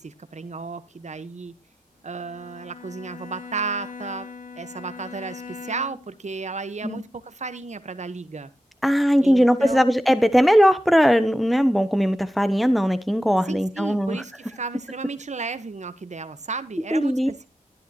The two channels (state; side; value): normal; both; correlation 0.91